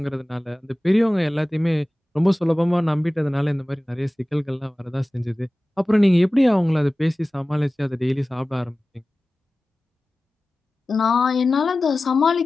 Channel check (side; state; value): both; normal; correlation 0.97